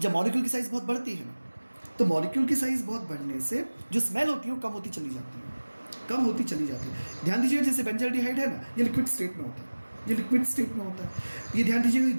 जब मॉलिक्यूल की साइज़ बहुत बढ़ती है ना, तो मॉलिक्यूल की साइज़ बहुत बढ़ने से जो स्मेल होती है वो कम होती चली जाती है। ध्यान दीजिएगा, जैसे बेंजल्डिहाइड है ना, ये लिक्विड स्टेट में होता है, ये ध्यान दीजिएगा,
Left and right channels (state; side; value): inverted; both; correlation -1.00